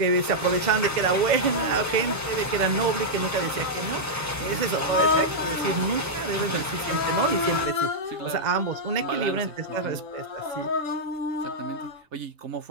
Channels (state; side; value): normal; both; correlation -0.06